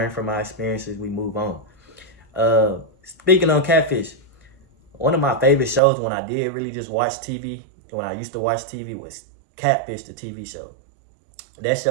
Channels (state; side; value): drops out; left; at 5.8 s